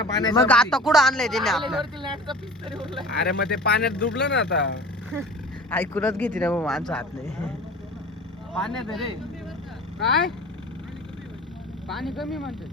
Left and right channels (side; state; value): both; normal; correlation 0.39